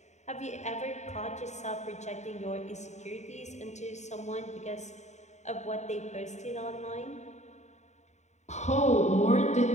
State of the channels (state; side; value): late; right; 0.34 ms